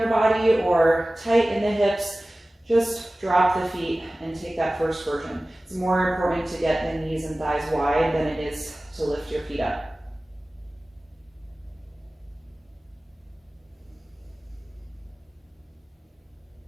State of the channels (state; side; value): normal; both; correlation 0.97